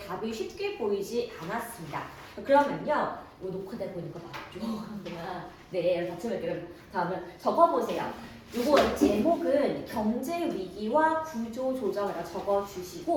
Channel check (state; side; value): identical; both; correlation 1.00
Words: 쉽게 보이지 않았습니다. 그러면요 이거 녹화돼 보니까 맞죠? 네 같이 볼게요. 다음은 적어보세요. 이거 제목은 경제 위기와 구조 조정이라